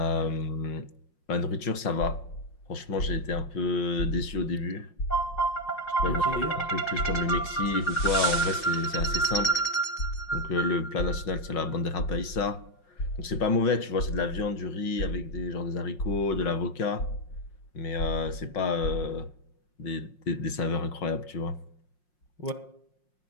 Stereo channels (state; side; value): late; right; 5.6 ms